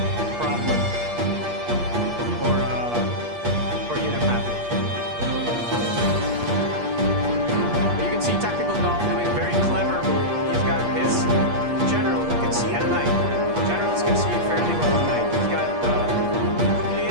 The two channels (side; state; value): left; late; 8.4 ms